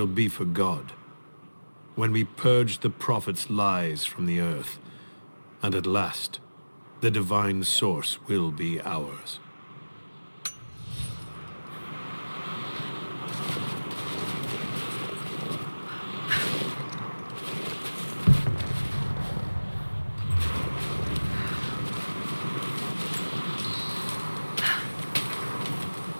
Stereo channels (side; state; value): both; inverted; correlation -1.00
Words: be for God, when we purge the Prophet's lies from the earth, and at last, the divine source will be ours.